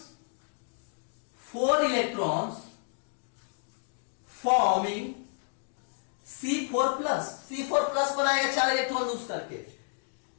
4 electrons forming C4+। C4+ बनाएगा 4 इलेक्ट्रॉन लूज करके।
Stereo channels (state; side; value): silent; right; digital silence